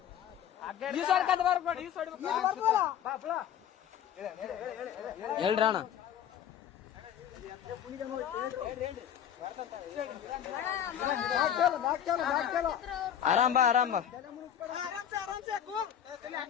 ಹೇಳ್ರಿ ಅಣ್ಣ. ಆರಾಮ್ ಬಾ ಆರಾಮ್ ಬಾ.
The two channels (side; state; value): right; quieter; 9.7 dB